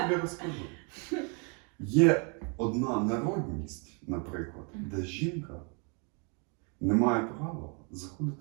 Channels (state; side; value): quieter; left; 36.0 dB